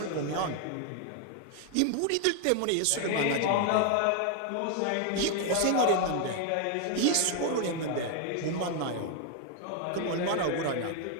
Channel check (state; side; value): different; both; correlation 0.00